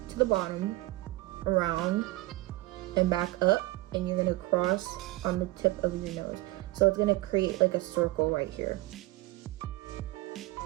to the bottom, around, and back up, and you're gonna cross on the tip of your nose. So it's gonna create like a circle right here.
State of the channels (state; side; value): quieter; left; 19.2 dB